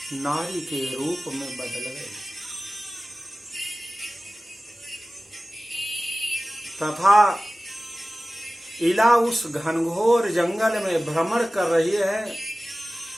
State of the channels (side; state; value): both; normal; correlation 0.97